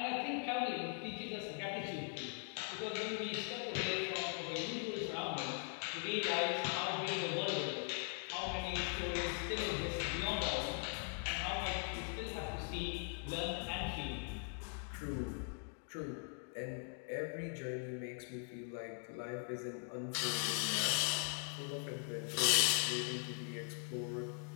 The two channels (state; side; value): silent; right; 50 dB below the other